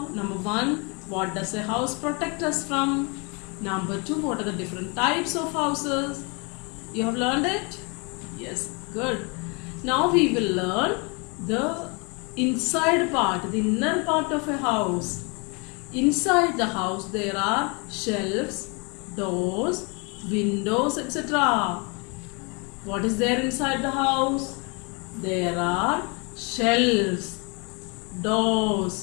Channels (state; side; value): quieter; right; 31.5 dB